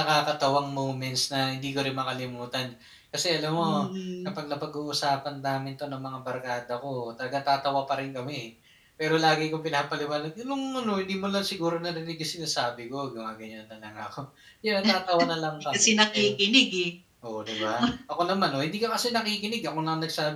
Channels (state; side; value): identical; both; correlation 1.00